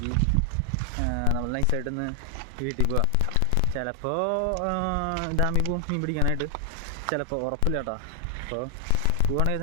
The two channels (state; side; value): different; both; correlation 0.00